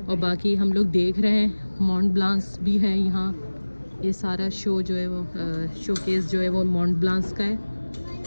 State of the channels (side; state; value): both; inverted; correlation -1.00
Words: और बाकी हम लोग देख रहे हैं मॉन्ट ब्लांस भी है यहाँ। ये सारा शो जो है वो शोकेस जो है वो मॉन्ट ब्लांस का है।